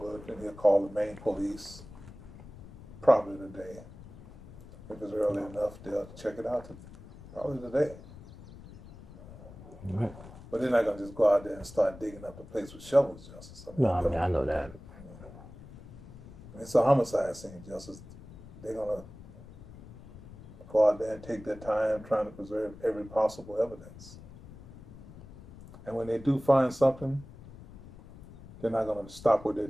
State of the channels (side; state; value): left; noise; rumble, 17 dB below the sound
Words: and he'll call the Maine police. Probably today. If it's early enough, they'll check it out. Probably today. Right. But they're not gonna just go out there and start digging up the place with shovels, Justice. No, I mean, I know that. It's a homicide scene, Justice. They're gonna go out there and take their time trying to preserve every possible evidence. And when they do find something, they're not gonna stop what they're